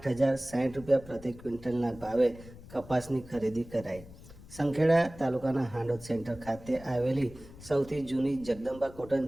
રૂપિયા પ્રતિ ક્વિન્ટલના ભાવે કપાસની ખરીદી કરાઈ। સંખેડા તાલુકાના હાંડોદ સેન્ટર ખાતે આવેલી સૌથી જૂની જગદંબા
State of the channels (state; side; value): noise; left; rumble, 18 dB below the sound